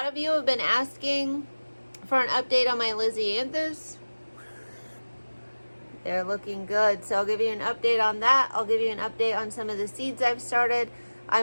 of you have been asking for an update on my Lisianthus. They're looking good, so I'll give you an update on that. I'll give you an update on some of the seeds I've started.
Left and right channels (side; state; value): both; inverted; correlation -1.00